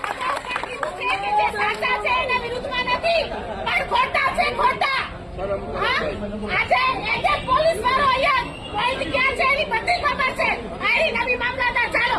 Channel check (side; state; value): both; identical; correlation 1.00